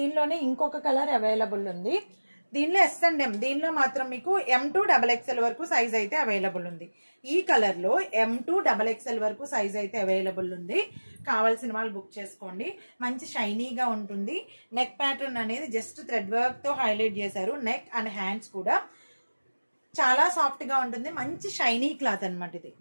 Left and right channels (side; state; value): both; inverted; correlation -1.00